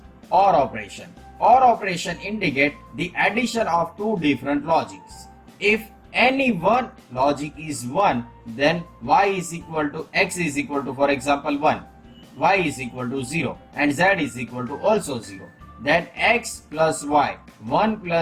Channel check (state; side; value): identical; both; correlation 1.00